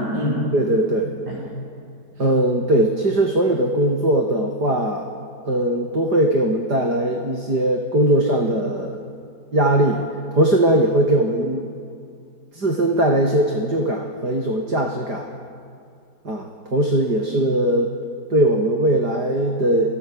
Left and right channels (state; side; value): late; left; 4.9 ms